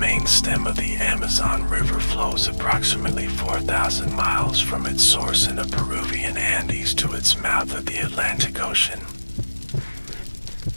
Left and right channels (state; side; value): inverted; both; correlation -1.00